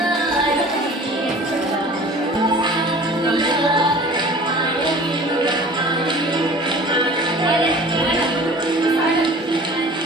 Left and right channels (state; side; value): normal; both; correlation 0.44